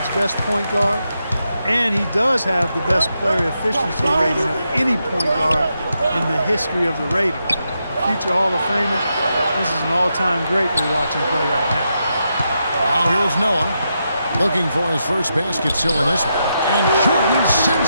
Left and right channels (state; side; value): inverted; both; correlation -0.84